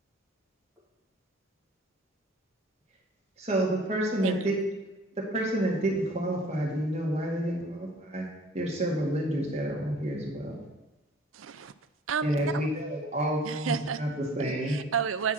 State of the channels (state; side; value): normal; both; correlation 0.50